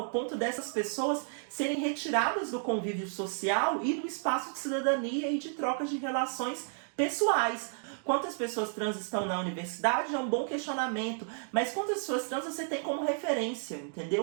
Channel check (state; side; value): silent; left; 56 dB below the other